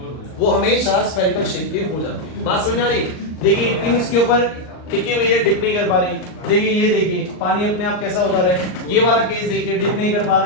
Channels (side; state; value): right; late; 39 ms